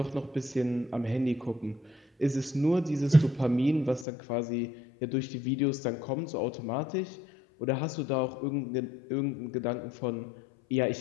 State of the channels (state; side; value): drops out; right; at 4.0 s